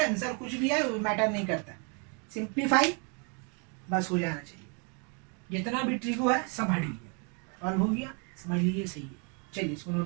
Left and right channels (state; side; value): quieter; left; 36.4 dB